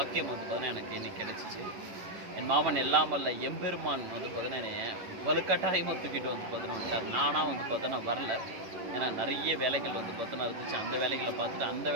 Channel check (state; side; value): late; left; 10 ms